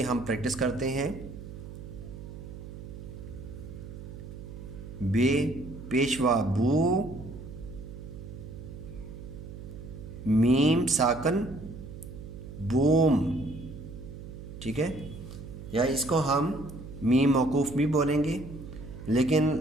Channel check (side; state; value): right; noise; hum, 12 dB below the sound